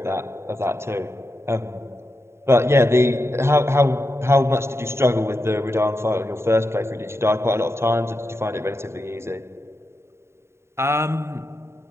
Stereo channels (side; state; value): left; late; 0.13 ms